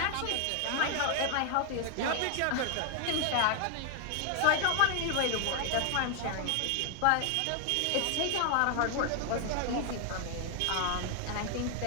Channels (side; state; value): both; different; correlation 0.00